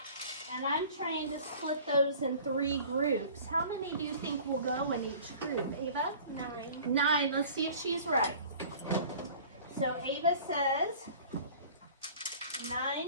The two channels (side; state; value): both; inverted; correlation -0.45